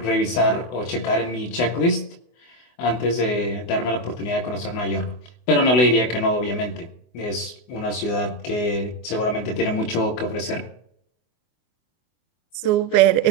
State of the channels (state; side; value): late; right; 24 ms